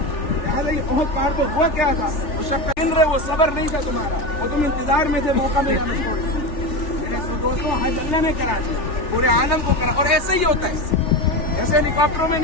بہت پار پر ہوا کیا تھا, اس وقت گن رہے وہ صبر نہیں تھا تمہارا, وہ تم انتظار میں تھے موقع ملا نہیں. میرے دوستوں حج اللہ نے کرا دیا, پورے عالم کو کرا, اور ایسے ہی ہوتا ہے, ایسے ہیلی کاپٹروں میں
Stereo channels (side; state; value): right; late; 3.4 ms